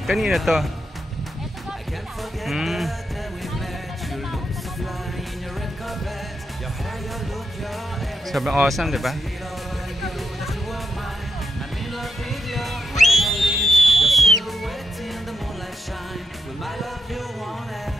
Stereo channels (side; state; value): both; normal; correlation 0.84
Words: Kanina to? Sobrang awesome, di ba?